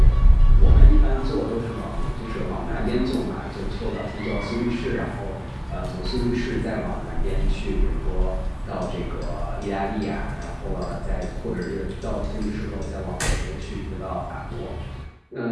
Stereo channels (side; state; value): both; identical; correlation 1.00